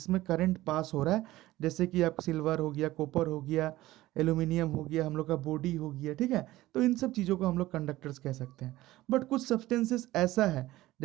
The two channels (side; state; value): left; quieter; 16.9 dB